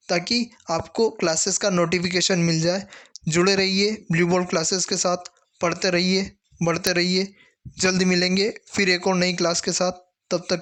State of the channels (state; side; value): identical; both; correlation 1.00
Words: ताकि आपको क्लासेस का नोटिफिकेशन मिल जाए। जुड़े रहिए ब्लू बोर्ड क्लासेस के साथ, पढ़ते रहिए, बढ़ते रहिए। जल्द मिलेंगे फिर एक और नई क्लास के साथ। तब